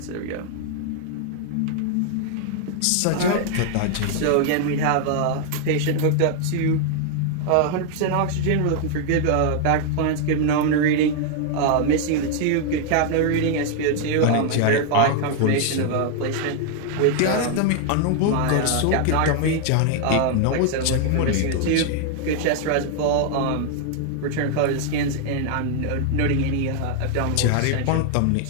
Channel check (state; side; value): different; both; correlation 0.00